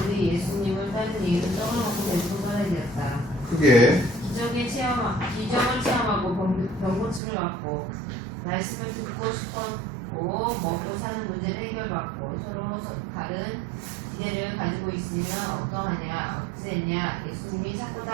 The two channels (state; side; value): drops out; left; at 7.2 s